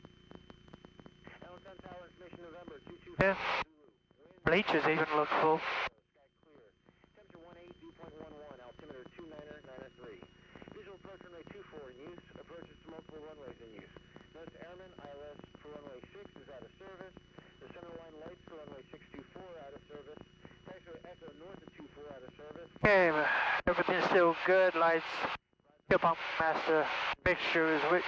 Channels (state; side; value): identical; both; correlation 1.00